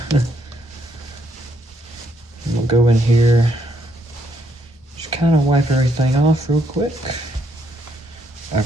We'll go in here, just kind of wipe everything off real quick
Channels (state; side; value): normal; both; correlation 0.73